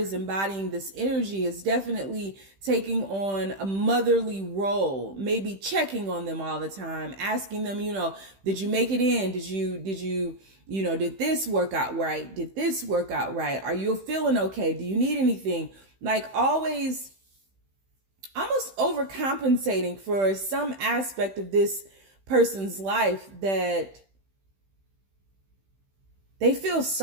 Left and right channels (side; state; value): left; late; 15 ms